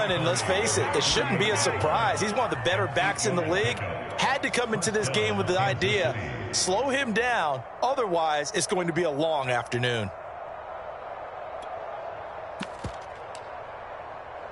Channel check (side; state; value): both; identical; correlation 1.00